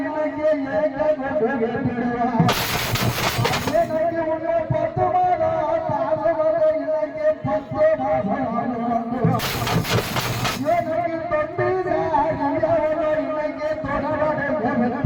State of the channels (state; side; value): identical; both; correlation 1.00